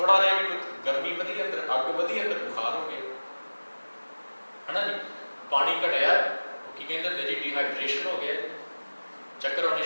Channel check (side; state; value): both; inverted; correlation -1.00